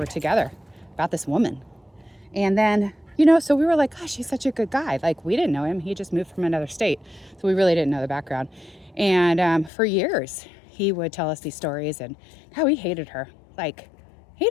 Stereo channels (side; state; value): right; drops out; at 9.7 s